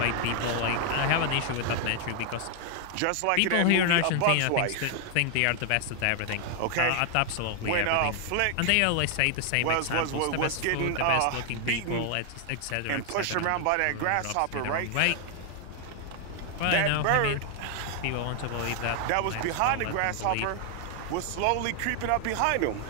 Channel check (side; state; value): both; different; correlation 0.00